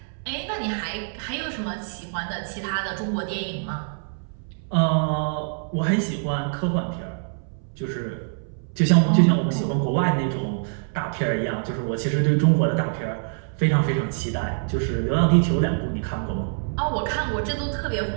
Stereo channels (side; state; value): left; silent; 62 dB below the other